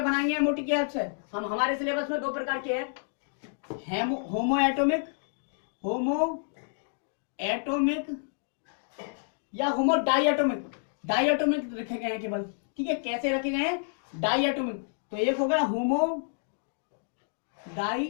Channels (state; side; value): silent; right; digital silence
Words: बनाएंगे एमओटी के हेल्प से। हम हमारे सिलेबस में दो प्रकार के हैं, होमो एटोमिक या होमो डाइएटोमिक। डाइएटोमिक रखे गए हैं केवल, ठीक है। कैसे रखे गए हैं? डाइएटोमिक। तो एक हो गया होमो